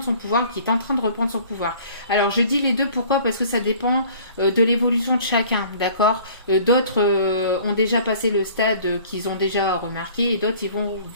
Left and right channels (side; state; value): both; inverted; correlation -0.50